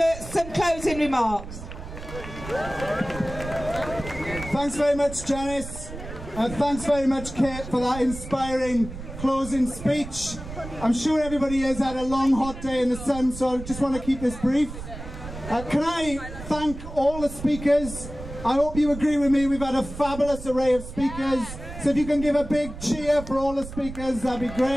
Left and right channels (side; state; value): right; noise; rumble, 11 dB below the sound